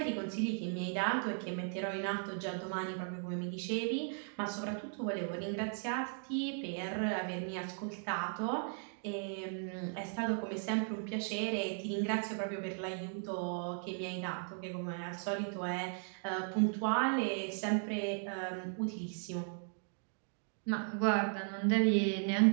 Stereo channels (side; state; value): left; silent; 53 dB below the other